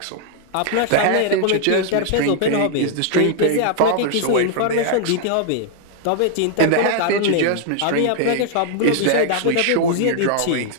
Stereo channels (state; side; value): different; both; correlation 0.00